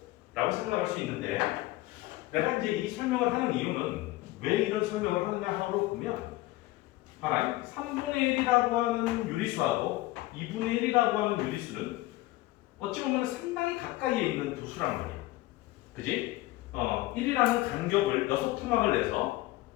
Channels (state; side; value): quieter; right; 18.2 dB